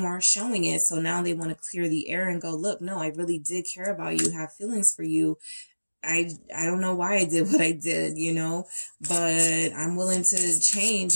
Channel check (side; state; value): both; inverted; correlation -1.00